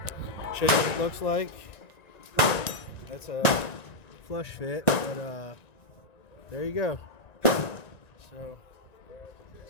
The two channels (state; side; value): late; right; 1.9 ms